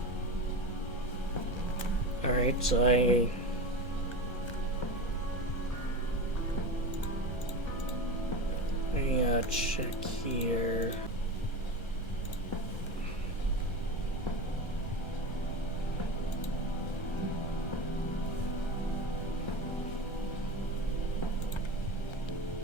Alright, so I check here.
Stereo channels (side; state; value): right; late; 1.3 ms